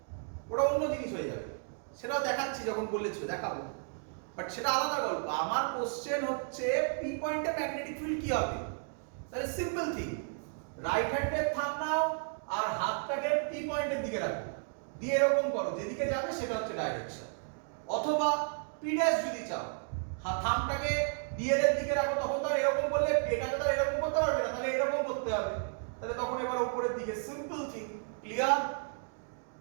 ওটা অন্য জিনিস হয়ে যাবে, সেটাও দেখাচ্ছি যখন বলেছো দেখাবো, বাট সেটা আলাদা গল্প। আমার কোশ্চেন হচ্ছে পি পয়েন্টে ম্যাগনেটিক ফিল্ড কি হবে? তাহলে সিম্পল থিং, রাইট হ্যান্ডের থাম নাও আর হাতটাকে পি পয়েন্টের দিকে রাখো, দিয়ে এরকম করো, যেদিকে যাবে সেটা হচ্ছে ডাইরেকশন। অথবা পি ড্যাশ যদি চাও, থামটাকে ডিএল এর দিকে রাখো, তখন তো এরকম করলে এটাকে তো এরকম করতে পারবে না, তাহলে এরকম করতে হবে, তাহলে তখন এবার উপরের দিকে, সিম্পল থিং, ক্লিয়ার?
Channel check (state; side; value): silent; left; 56 dB below the other